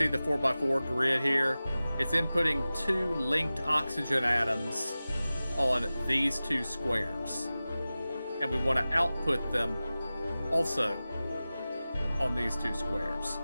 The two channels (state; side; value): inverted; both; correlation -0.96